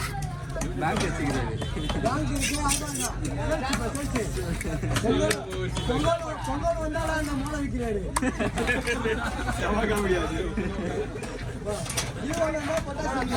பேங்க் வச்சுக்கிறாரு. பொங்கல் வந்தாலும் அந்த மூளை விற்கிறாரு.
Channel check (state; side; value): identical; both; correlation 1.00